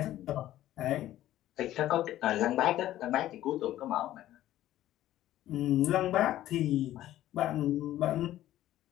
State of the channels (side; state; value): right; quieter; 13.7 dB